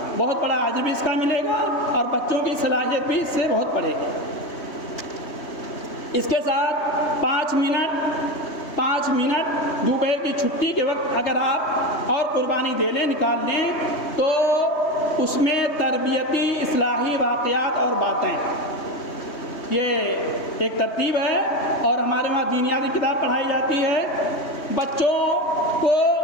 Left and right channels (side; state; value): right; late; 3.2 ms